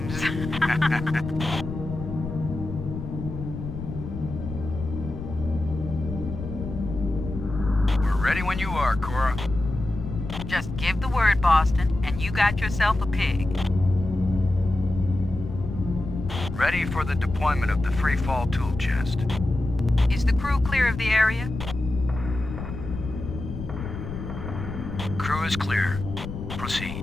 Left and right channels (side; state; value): left; noise; rumble, 8 dB below the sound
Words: We're ready when you are, Cora. Just give the word, Boston, and you got yourself a pig. Ready for the deployment of the free fall tool chest. Is the crew clear of the area? Crew is clear.